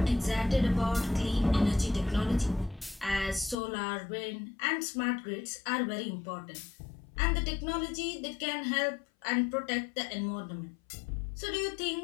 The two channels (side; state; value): right; drops out; at 3.6 s